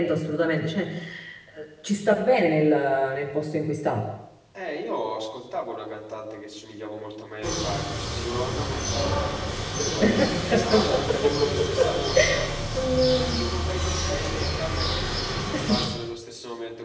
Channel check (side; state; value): both; identical; correlation 1.00